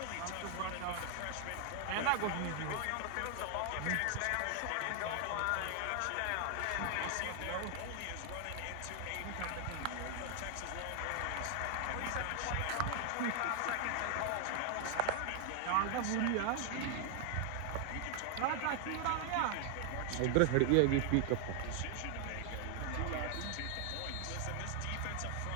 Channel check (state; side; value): different; both; correlation 0.00